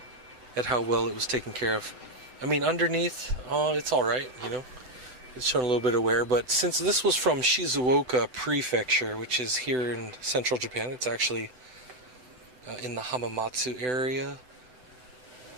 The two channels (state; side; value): late; left; 7.9 ms